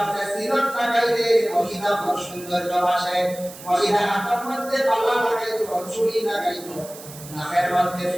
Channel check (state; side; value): noise; right; hiss, 16 dB below the sound